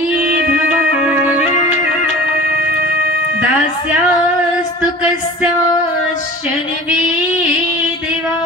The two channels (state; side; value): normal; both; correlation 0.40